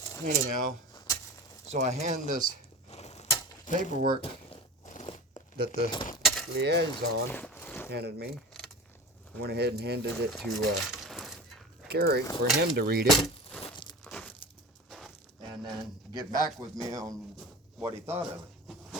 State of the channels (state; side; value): normal; both; correlation 0.33